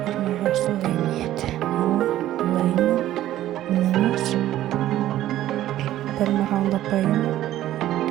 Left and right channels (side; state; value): left; quieter; 13.5 dB